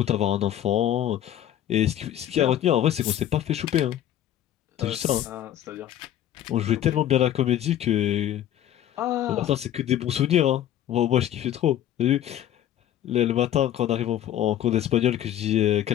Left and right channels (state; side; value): quieter; right; 11.6 dB